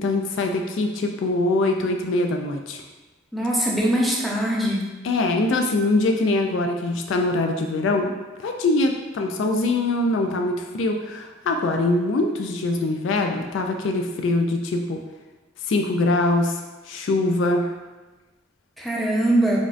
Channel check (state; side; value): normal; both; correlation 0.52